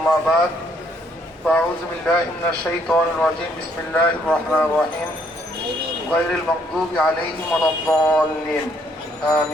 بعد فأعوذ بالله من الشيطان الرجيم بسم الله الرحمن الرحيم غير المغضوب عليهم ولا الضالين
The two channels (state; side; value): normal; both; correlation 0.68